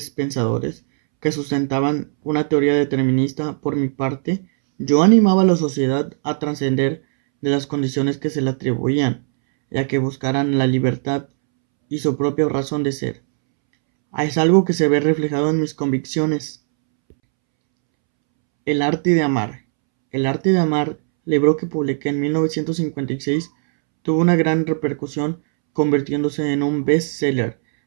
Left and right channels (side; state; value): left; silent; 66 dB below the other